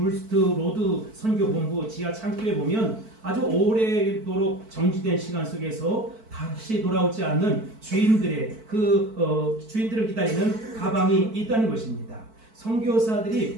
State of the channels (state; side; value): late; left; 4.5 ms